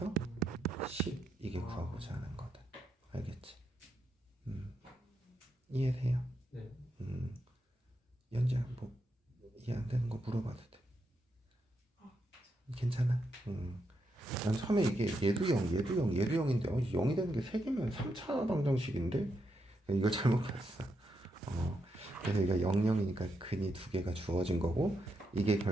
10 이게 구하고자 하는 거다. 알겠지? 이해돼요? 네. 연지야 뭐 이해 안 되는 거 물어봐도 돼. 괜찮아? 난 처음에 이게 얘도 0인데 0이 되는 게 3개면 3차 방정식인데 이거 잘못 봤어. 그래서 이거 00이니까 근이 두 개가 주어진 거고 이게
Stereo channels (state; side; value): normal; both; correlation 0.82